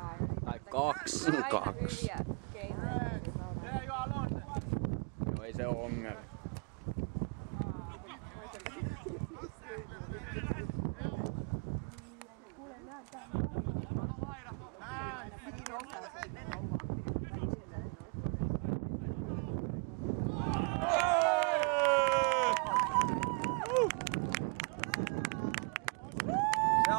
tai kaksi. Aina hyviä keinoja. Joo, ei se oo ongelma. Se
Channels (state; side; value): quieter; left; 36.1 dB